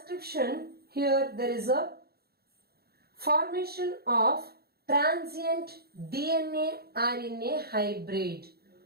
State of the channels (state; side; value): late; left; 0.46 ms